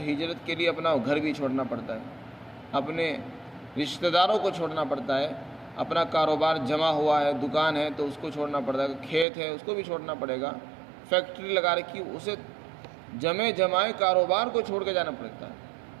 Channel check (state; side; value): drops out; left; at 9.2 s